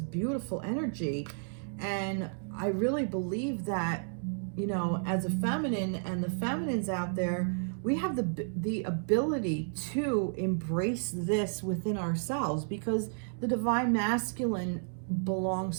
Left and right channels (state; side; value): silent; left; digital silence